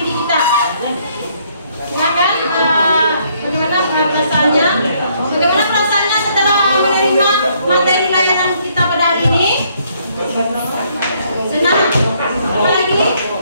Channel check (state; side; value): inverted; both; correlation -0.68